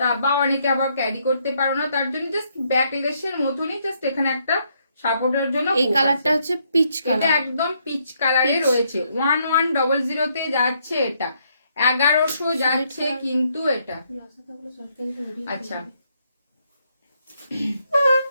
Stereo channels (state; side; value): inverted; both; correlation -0.73